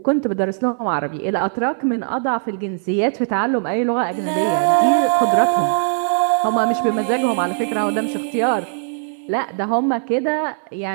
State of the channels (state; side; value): silent; left; 60 dB below the other